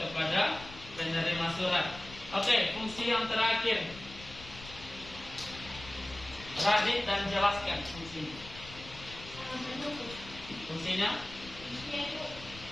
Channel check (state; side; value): noise; left; rumble, 16 dB below the sound